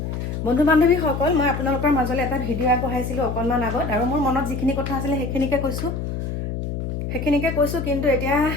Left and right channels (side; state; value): left; noise; hum, 4 dB below the sound